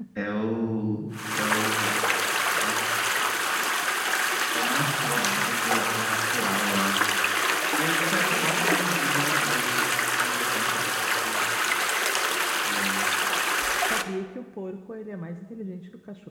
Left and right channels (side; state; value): both; identical; correlation 1.00